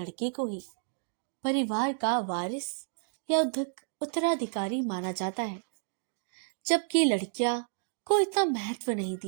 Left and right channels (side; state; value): left; silent; digital silence